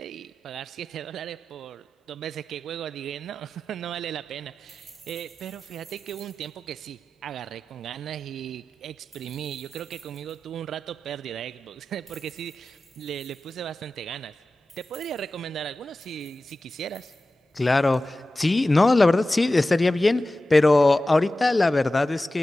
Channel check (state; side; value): normal; both; correlation 0.94